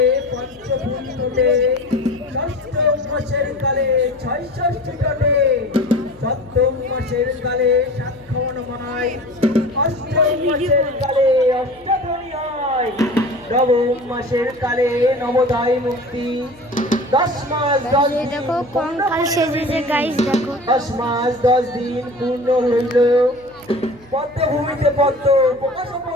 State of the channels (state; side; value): noise; left; hum, 26 dB below the sound